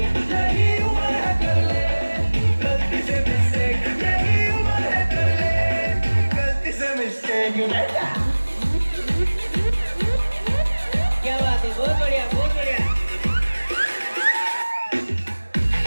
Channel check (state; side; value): inverted; both; correlation -1.00